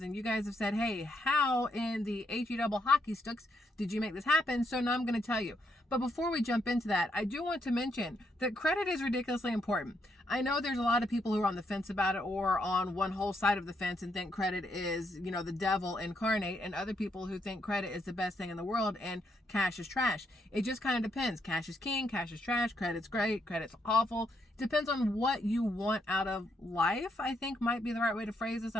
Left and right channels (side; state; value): both; normal; correlation 0.76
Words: and you guys have said, hey, how in the HE double hockey sticks did you make this happen? So now I'm going to tell you. But before we jump into that, I do want to mention that credit is ridiculously important. I know there's a lot of people who are on the fence about it, or on one whole side of the fence and think credit is, the devil incarnate, and other people who think credit is the best thing in the world and cash is trash. It just kind of depends. Cash is king, cash is trash, credit's great, credit's awful. Depends on what you want out of life, I think might be the right way to phrase this. I